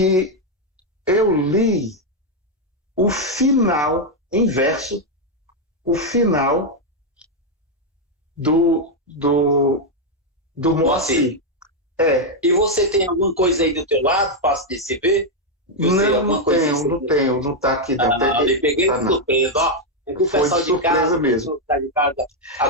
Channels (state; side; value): normal; both; correlation 0.01